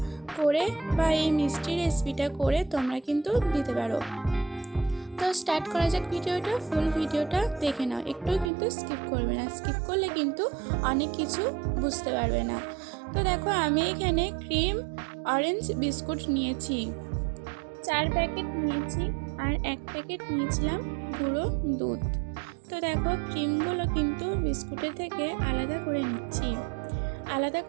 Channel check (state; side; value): drops out; left; at 8.5 s